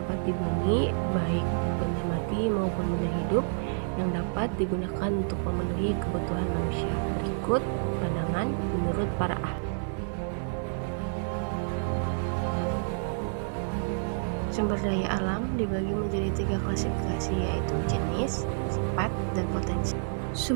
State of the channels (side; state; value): left; silent; digital silence